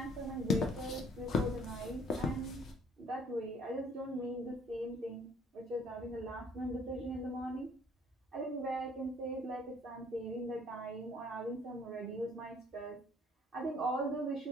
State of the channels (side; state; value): both; normal; correlation 0.59